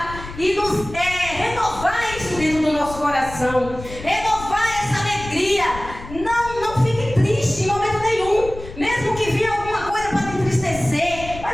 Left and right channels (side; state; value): left; noise; rumble, 13 dB below the sound